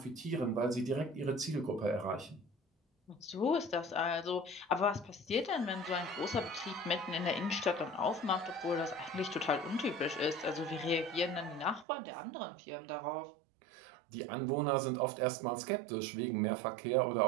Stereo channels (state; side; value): drops out; left; at 11.9 s